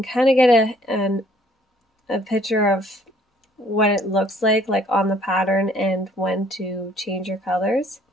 kind of get a picture of what it looks like on the pattern and when to change your colors.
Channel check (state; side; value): normal; both; correlation 0.61